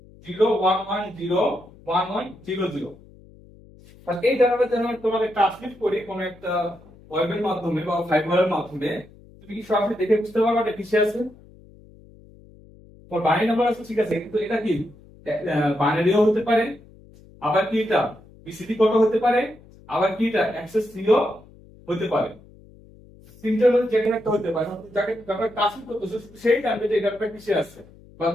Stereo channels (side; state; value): left; noise; hum, 24 dB below the sound